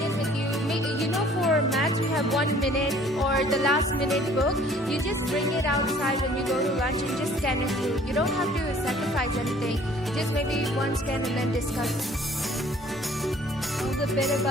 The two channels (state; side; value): normal; both; correlation 0.55